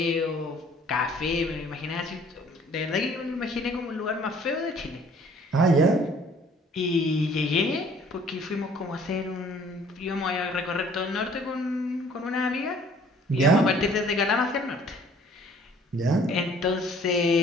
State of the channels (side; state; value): both; normal; correlation 0.56